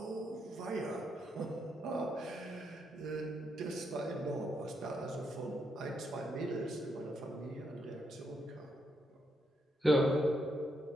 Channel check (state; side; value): normal; both; correlation 0.79